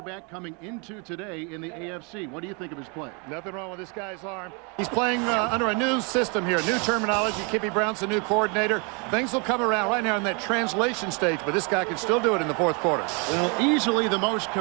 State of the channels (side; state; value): left; quieter; 33.1 dB